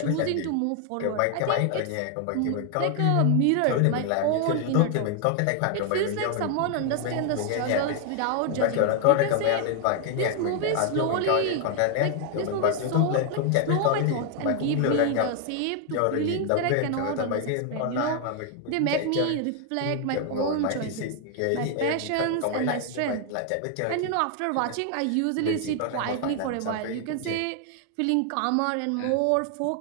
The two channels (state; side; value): different; both; correlation 0.00